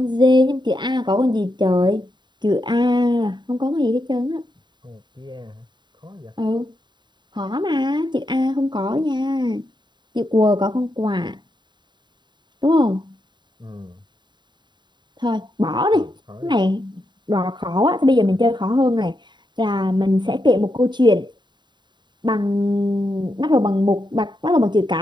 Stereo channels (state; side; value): late; left; 0.22 ms